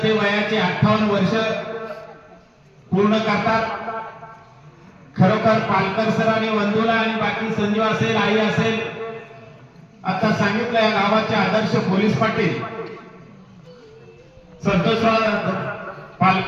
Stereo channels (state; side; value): identical; both; correlation 1.00